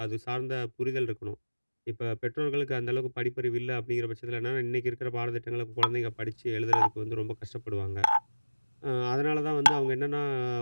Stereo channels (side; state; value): both; inverted; correlation -1.00